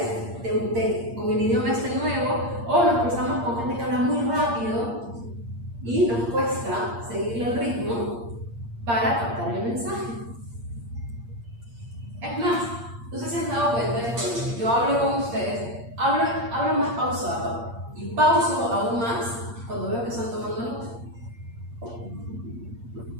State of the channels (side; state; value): left; late; 8.6 ms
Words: con el idioma este nuevo, o nos cruzamos con gente que habla muy rápido y nos cuesta seguirle el ritmo para captar el mensaje. Es más, no sé si se han dado cuenta de que cuando yo hablo con ustedes, hablo más pausado y pauso aún más cuando veo que están tomando nota.